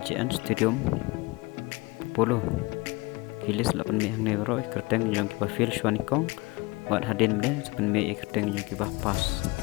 JN Stadium POLO kilis 8 mi hang nevro ikerteng yang kiba fil shwanikong buat hadin mle 8 mi ikerteng yang kiba pas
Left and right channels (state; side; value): quieter; right; 24.1 dB